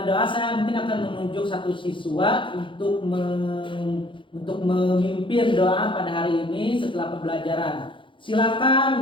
doa. Saya mungkin akan menunjuk satu siswa untuk memimpin doa pada hari ini setelah pembelajaran.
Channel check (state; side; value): late; right; 0.24 ms